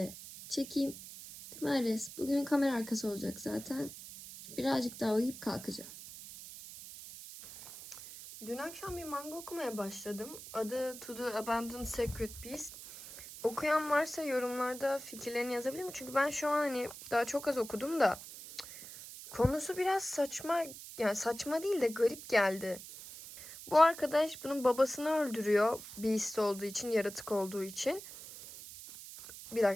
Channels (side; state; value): right; noise; hiss, 13 dB below the sound